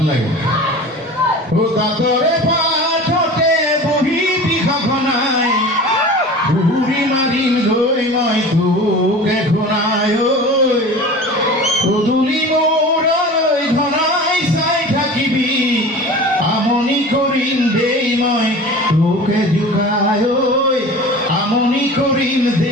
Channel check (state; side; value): normal; both; correlation 0.37